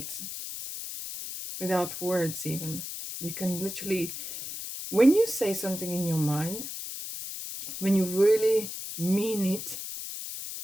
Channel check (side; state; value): left; noise; hiss, 8 dB below the sound